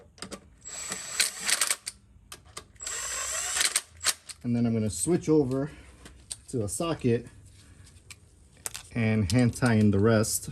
And then I'm gonna switch over to a socket and hand tie in the rest.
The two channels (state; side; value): identical; both; correlation 1.00